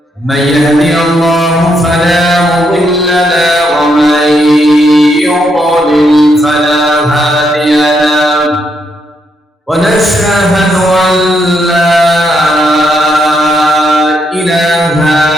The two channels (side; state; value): both; normal; correlation 0.78